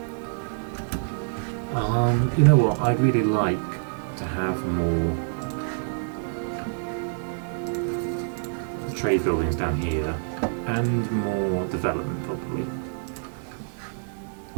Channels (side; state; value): left; silent; digital silence